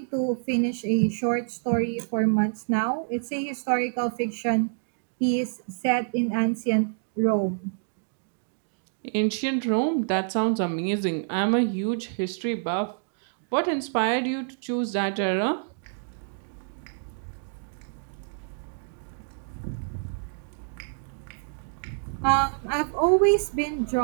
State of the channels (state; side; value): silent; left; digital silence